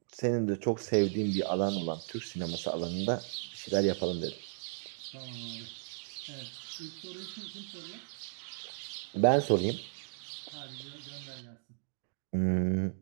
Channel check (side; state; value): left; silent; digital silence